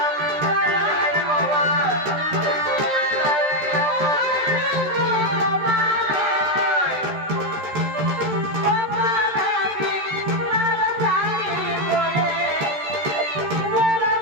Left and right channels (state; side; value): late; left; 13 ms